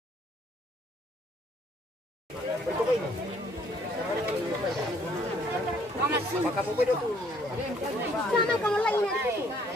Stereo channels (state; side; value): normal; both; correlation 0.63